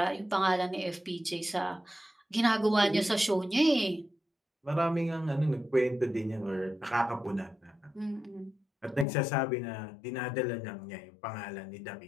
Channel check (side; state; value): right; drops out; at 9.1 s